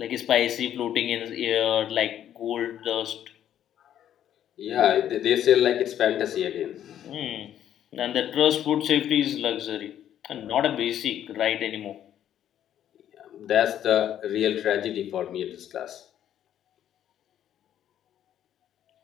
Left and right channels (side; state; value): right; quieter; 10.7 dB